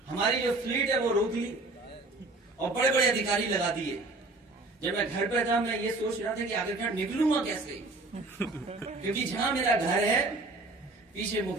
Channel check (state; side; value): quieter; left; 3.1 dB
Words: हमारी जो फ्लीट है वो रोक ली और बड़े बड़े अधिकारी लगा दिए। जब मैं घर पे था मैं ये सोच रहा था कि आखिरकार निकलूंगा कैसे, क्योंकि जहां मेरा घर है पीछे